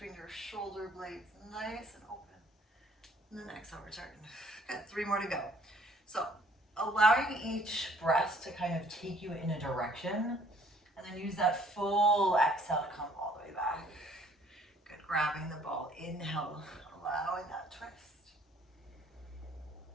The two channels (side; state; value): both; normal; correlation 0.59